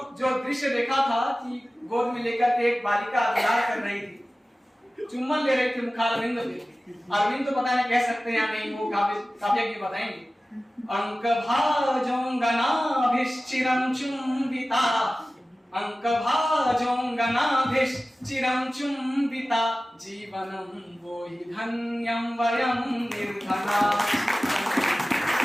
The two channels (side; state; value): both; normal; correlation 0.96